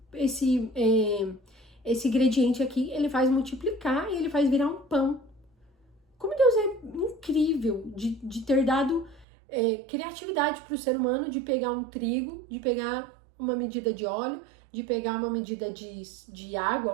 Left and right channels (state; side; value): drops out; left; at 9.2 s